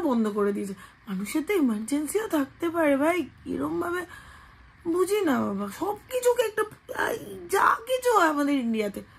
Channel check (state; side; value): identical; both; correlation 1.00